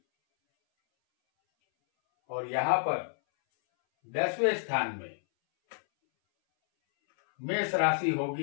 और यहां पर 10वें स्थान में मेष राशि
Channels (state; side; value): silent; right; 58 dB below the other